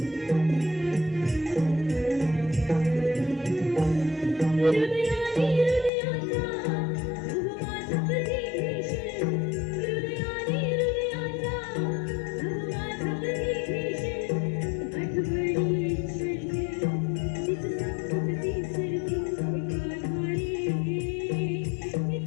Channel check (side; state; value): right; drops out; at 5.9 s